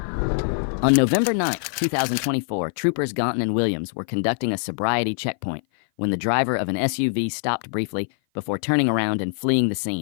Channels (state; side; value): silent; right; 56 dB below the other